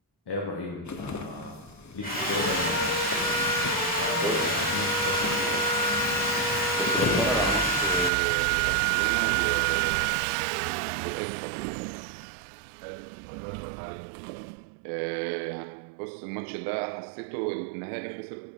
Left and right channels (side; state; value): left; drops out; at 8.1 s